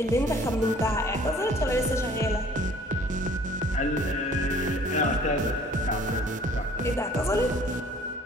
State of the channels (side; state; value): both; normal; correlation 0.53